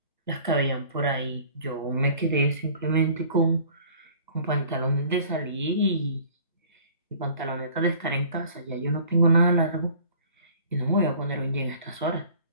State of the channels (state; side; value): inverted; both; correlation -0.49